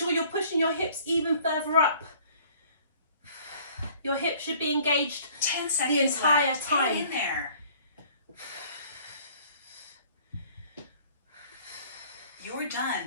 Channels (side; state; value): both; inverted; correlation -0.54